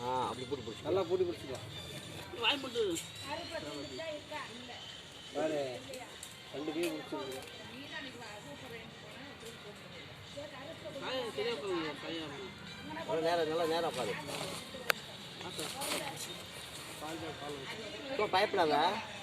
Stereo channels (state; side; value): identical; both; correlation 1.00